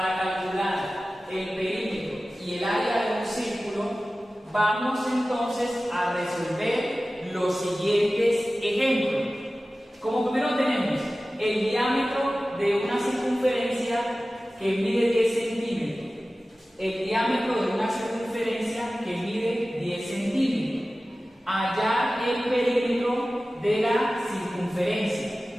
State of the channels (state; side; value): normal; both; correlation 0.96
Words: calcular el perímetro y el área de un círculo, vamos entonces a resolver los siguientes ejemplos. Como primero tenemos el diámetro de una circunferencia que mide 10 centímetros. El diámetro de una circunferencia que mide 10 centímetros. Hallar el perímetro de la circunferencia.